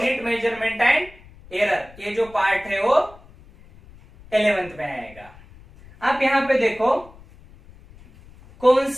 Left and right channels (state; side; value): noise; left; rumble, 23 dB below the sound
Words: measurement and error, ये जो पार्ट है वो 11th में आएगा. आप यहां पे देखो कौन